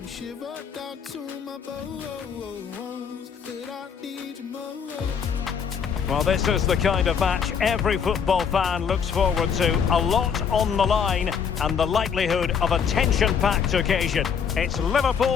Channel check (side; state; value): right; quieter; 6.9 dB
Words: shiver. Down to my bones, but I need you more. Well, this is the kind of match every football fan looks forward to. A lot on the line and the likelihood of a tension-packed occasion. It's